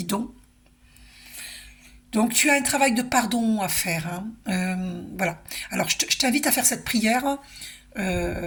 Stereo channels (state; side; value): identical; both; correlation 1.00